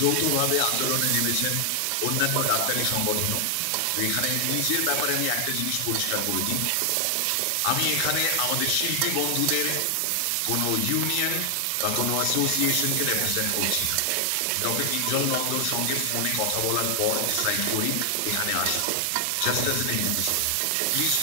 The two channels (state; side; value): different; both; correlation 0.00